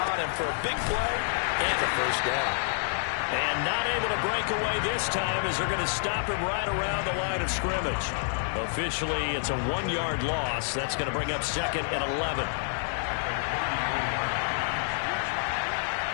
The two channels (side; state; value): right; silent; 59 dB below the other